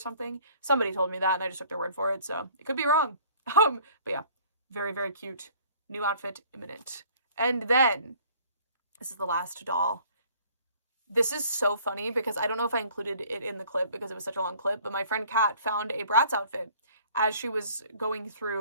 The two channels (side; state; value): both; inverted; correlation -0.54